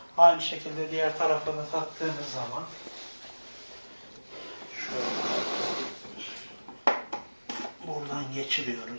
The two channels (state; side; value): inverted; both; correlation -1.00